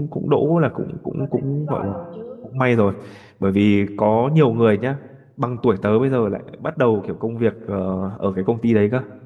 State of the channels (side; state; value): both; identical; correlation 1.00